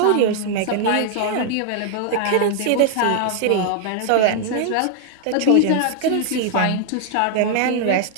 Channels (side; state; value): both; different; correlation 0.00